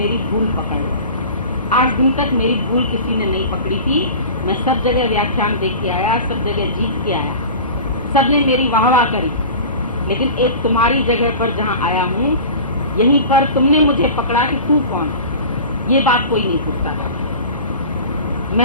भूल पकड़ ले। आज दिन तक मेरी भूल किसी ने नहीं पकड़ी थी। मैं सब जगह व्याख्यान देख के आया, सब जगह जीत के आया, सबने मेरी वाहवाह करी, लेकिन एक तुम्हारी जगह पर जहाँ आया हूँ, यहीं पर तुमने मुझे पकड़ा कि तू कौन है। ये बात कोई नहीं पूछता था।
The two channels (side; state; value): both; inverted; correlation -0.36